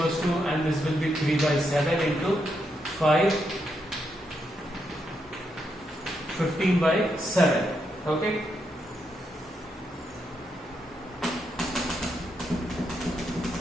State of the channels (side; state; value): both; normal; correlation 0.81